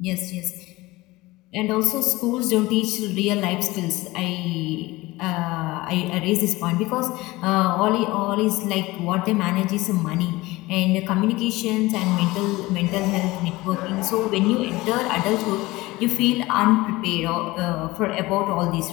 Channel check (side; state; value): right; quieter; 20.3 dB